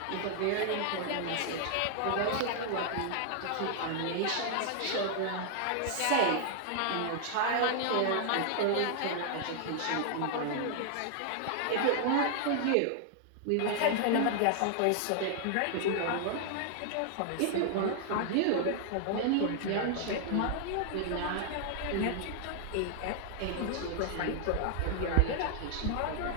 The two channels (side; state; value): both; different; correlation 0.00